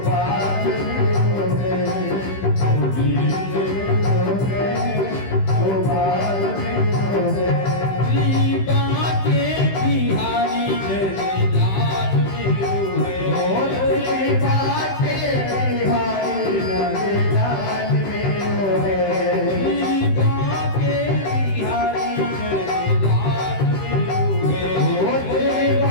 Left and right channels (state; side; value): late; right; 15 ms